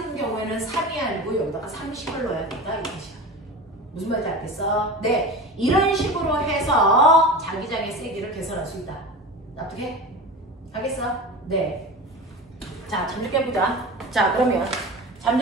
경우에는 3이 아니고 여기다가 30을 넣어야 된다. 이 뜻이야. 무슨 말인지 알겠어? 네. 이런 식으로 해서 자기장의 세기를 계산할 수 있다. 납득해? 알겠어? 네. 자, 잠 좀 깨보자. 자, 그러면 잠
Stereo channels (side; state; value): both; normal; correlation 0.31